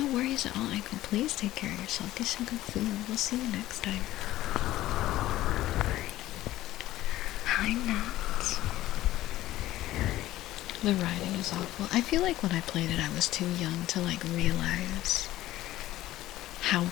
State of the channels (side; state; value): right; quieter; 15.3 dB